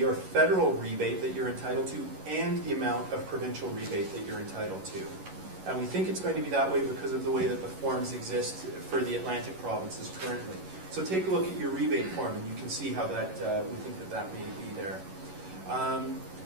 or federal rebate, that you're entitled to, and the amount of provincial rebate that you're entitled to. And we think it's going to be that way because of the way that the forms exist for the Atlantic provinces currently. So take a look at your rebate form, and you can see how that we think that may be there.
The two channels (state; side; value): late; left; 11 ms